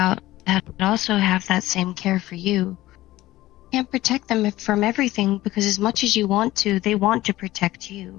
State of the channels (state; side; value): quieter; right; 16.5 dB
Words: that also have that same care for you. You can't protect them from everything because as much as you want to, they want to protect